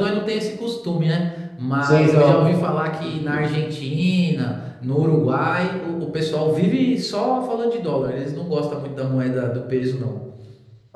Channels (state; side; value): identical; both; correlation 1.00